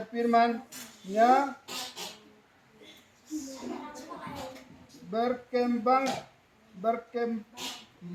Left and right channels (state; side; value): identical; both; correlation 1.00